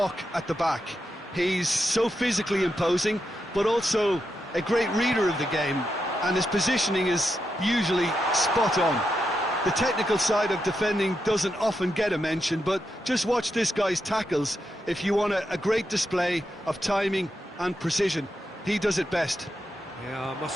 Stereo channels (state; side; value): normal; both; correlation 0.85